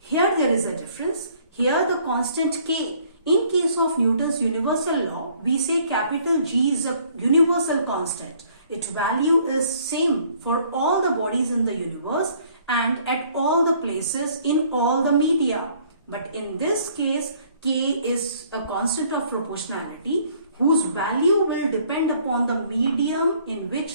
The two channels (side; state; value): both; inverted; correlation -0.61